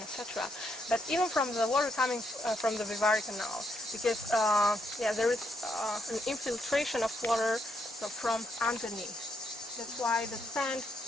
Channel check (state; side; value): normal; both; correlation 0.77